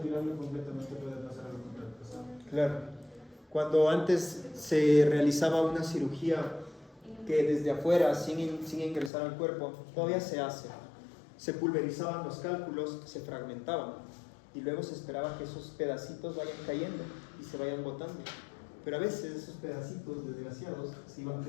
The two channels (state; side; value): drops out; right; at 9.1 s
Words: completamente puede pasar algo contrapesado. Claro. Cuando antes se realizaba una cirugía que desde afuera, sin ingresar al cuerpo, todavía se hace. Se pulverizaban los cálculos, se fragmentaban y luego se esperaba que esos pedacitos vayan cayendo y se vayan botando. Pero a veces esos pedacitos desgraciados se iban